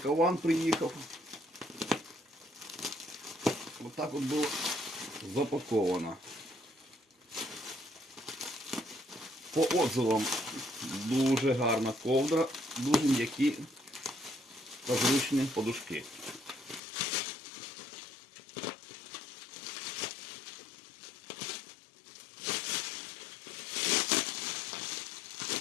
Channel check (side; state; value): right; drops out; at 16.8 s